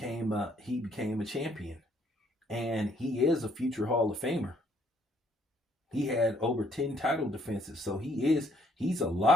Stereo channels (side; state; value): both; normal; correlation 0.66